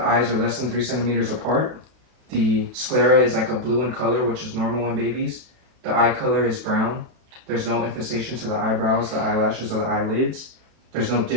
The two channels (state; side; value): late; left; 32 ms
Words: eyes are less than 3 centimeters apart. The sclera is like a blue in color, which is normal in babies. The eye color is brown. There's no infestation to the eyebrows, the eyelashes, or the eyelids. There's no